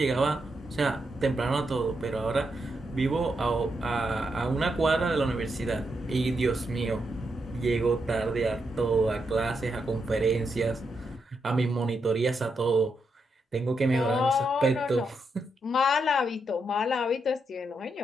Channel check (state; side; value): normal; both; correlation 0.82